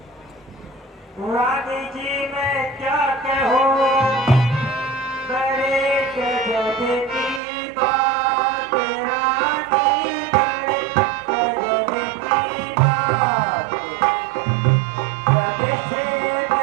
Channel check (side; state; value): left; drops out; at 7.4 s